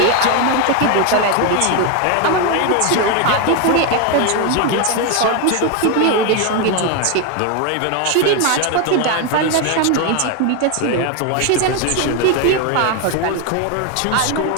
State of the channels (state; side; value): different; both; correlation 0.01